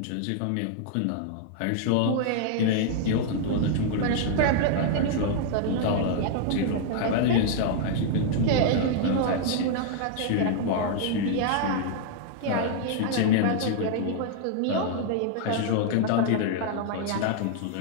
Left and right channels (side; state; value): both; different; correlation -0.01